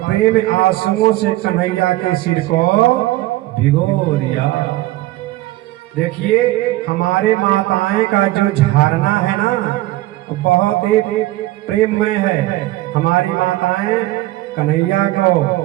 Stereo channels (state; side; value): quieter; left; 17.1 dB